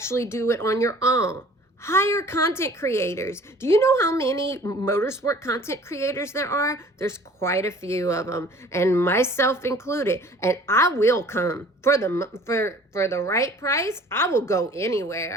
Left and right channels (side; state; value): both; normal; correlation 0.50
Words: do it on your own, hire content creators. Do you know how many motorsport content creators there are? There's quite a few of them, and myself included. And I will come for the right price. I will go